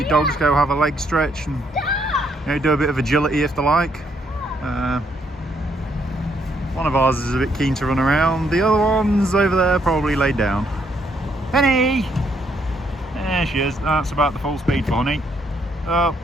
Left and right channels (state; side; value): normal; both; correlation 0.72